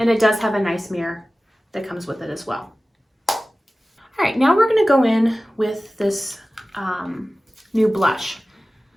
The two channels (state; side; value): normal; both; correlation 0.97